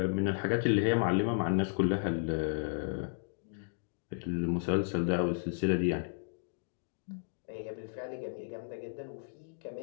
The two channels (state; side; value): silent; right; digital silence